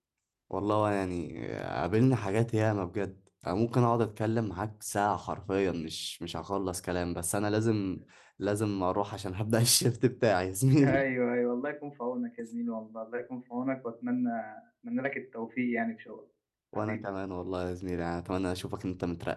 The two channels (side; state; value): both; identical; correlation 1.00